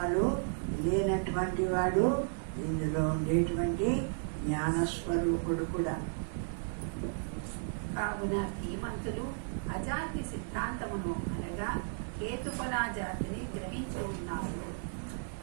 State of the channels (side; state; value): left; silent; digital silence